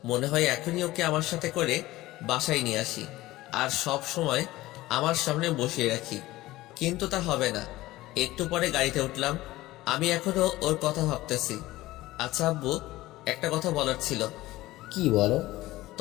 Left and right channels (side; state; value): right; quieter; 17.6 dB